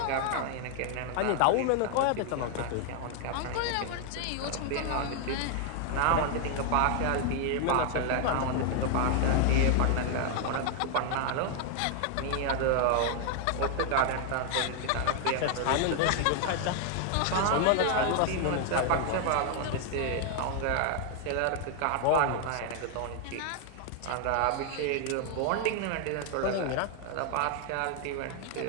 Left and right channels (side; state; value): both; different; correlation 0.00